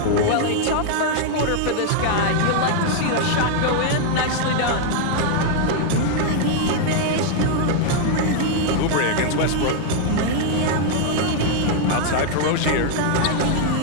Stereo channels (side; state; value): both; different; correlation 0.00